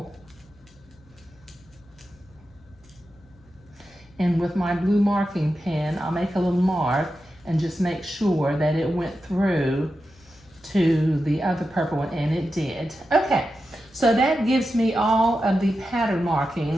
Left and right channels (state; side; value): noise; left; hum, 28 dB below the sound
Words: and with my blue marking pen, I'll make a little mark and just make sure that it went through to the other purple one, and it did. Okay, so that gives me all of the pattern